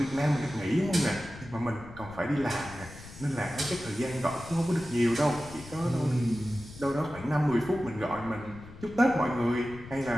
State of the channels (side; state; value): left; noise; rumble, 16 dB below the sound